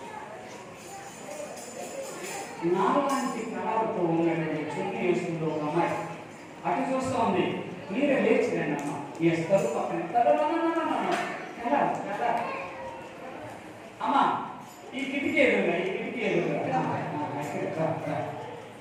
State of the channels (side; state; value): both; identical; correlation 1.00